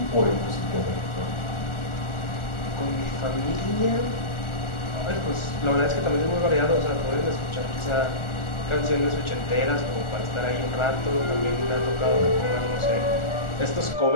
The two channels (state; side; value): late; right; 1.4 ms